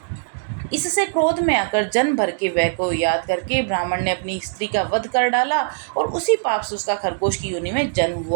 इससे क्रोध में आकर जन्म भर के व्यय को याद करके ब्राह्मण ने अपनी स्त्री का वध कर डाला और उसी पाप से उसका खरगोश की योनि में जन्म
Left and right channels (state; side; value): silent; left; digital silence